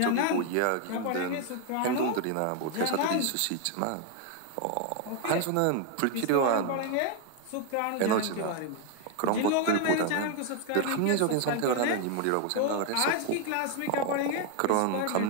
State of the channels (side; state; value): both; different; correlation 0.00